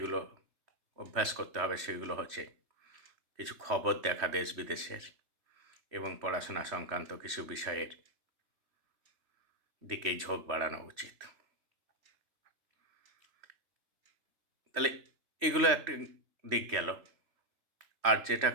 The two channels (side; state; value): left; late; 3.1 ms